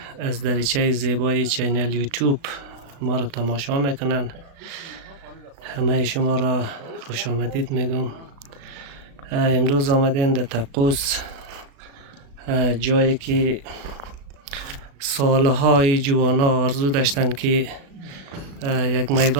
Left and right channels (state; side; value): late; left; 36 ms